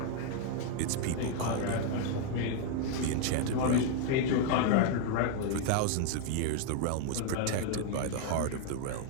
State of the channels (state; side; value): different; both; correlation 0.00